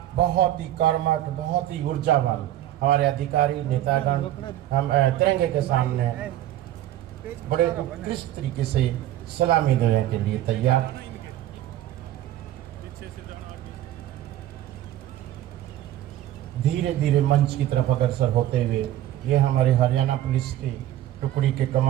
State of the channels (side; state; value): left; quieter; 13.1 dB